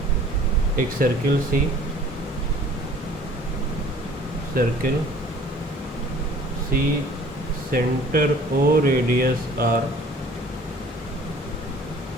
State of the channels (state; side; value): normal; both; correlation 0.51